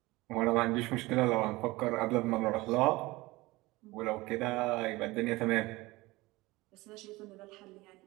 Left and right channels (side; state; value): left; quieter; 20.8 dB